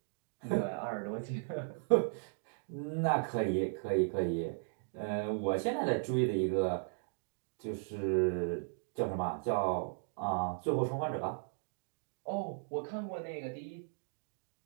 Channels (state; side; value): silent; left; digital silence